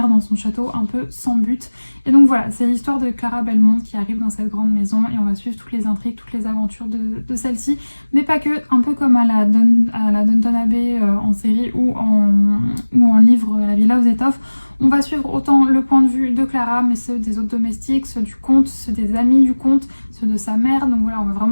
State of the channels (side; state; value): both; inverted; correlation -1.00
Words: dans son château un peu sans but. Et donc voilà, c'est l'histoire de Clara Belmont qui arrive dans cette grande maison et on va suivre toutes les intrigues, toutes les aventures de celle-ci, mais pas que, un peu comme à la Downton Abbey en série ou en livre La Villa aux Étoffes. On va suivre autant le point de vue de Clara, mais ceux des autres domestiques, ceux du comte, ceux des amis du comte, ceux de sa mère. Donc voilà, on va